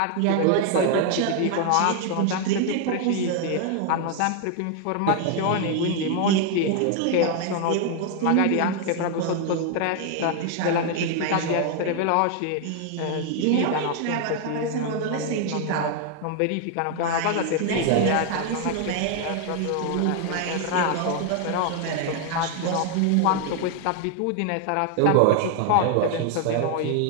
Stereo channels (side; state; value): both; different; correlation 0.00